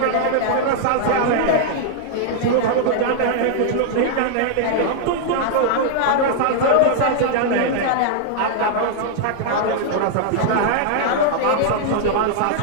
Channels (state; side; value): different; both; correlation -0.01